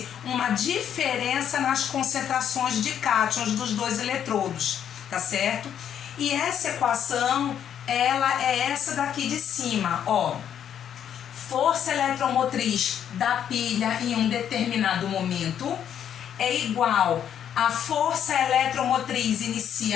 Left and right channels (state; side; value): quieter; right; 9.3 dB